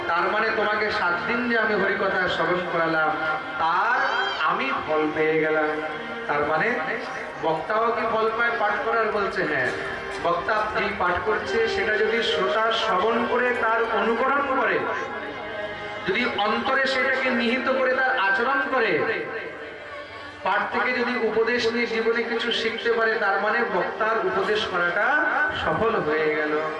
তার মানে তোমাকে 7 দিন যে আমি হরিকথা শ্রবণ করালাম তার আমি ফল পেয়ে গেলাম। তার মানে বক্তাও কি ফল পায় পাঠ করার? বলছে হ্যাঁ। বক্তা যেই পাঠ করছে সেটা যদি শ্রোতা শ্রবণ করে তার অনুকরণ করে, যদি অন্তরে সেটাকে নিহিত করে তার আচরণ করে, পাঠ থেকে যদি উপদেশ নিয়ে জীবনে কিছু শিখতে পারে, তার মানে বক্তার উপদেশ করাটা সফল হয়ে গেল।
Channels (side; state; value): both; identical; correlation 1.00